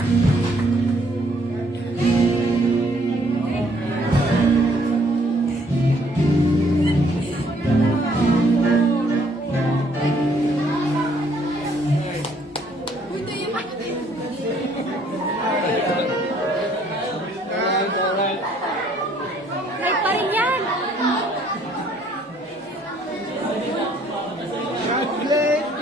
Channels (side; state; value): both; normal; correlation 0.64